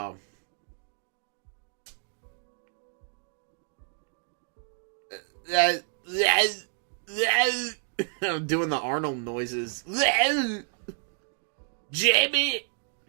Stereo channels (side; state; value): left; silent; 58 dB below the other